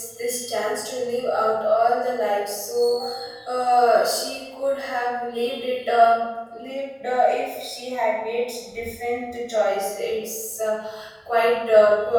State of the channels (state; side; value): identical; both; correlation 1.00